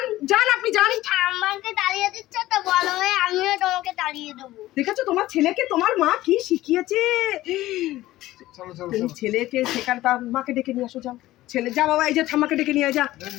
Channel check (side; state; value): right; quieter; 16.2 dB